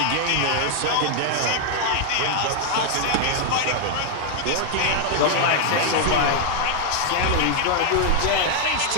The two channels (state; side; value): different; both; correlation 0.00